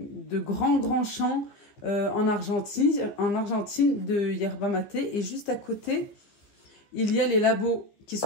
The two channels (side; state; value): right; late; 14 ms